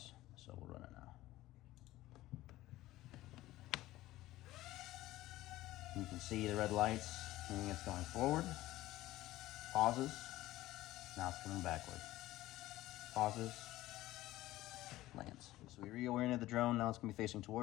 So we'll run it now. You can see the red lights, meaning it's going forward. Pauses. Now it's coming backward. Pauses. Lands. So we reoriented the drone. Now it's going to be facing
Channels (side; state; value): right; quieter; 16.4 dB